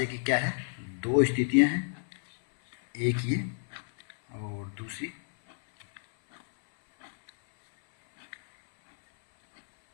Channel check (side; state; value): right; silent; 58 dB below the other